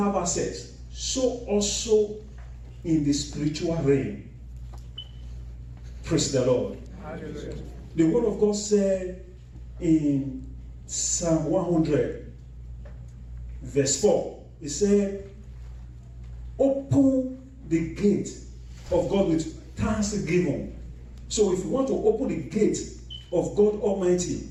access. So also in the spiritual realm. Praise the Lord. Hallelujah. The word of God said in Psalm 100, verse 4, it said, open the gate of God with thanksgiving. So if you want to open the gate of God Almighty,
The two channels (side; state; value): both; identical; correlation 1.00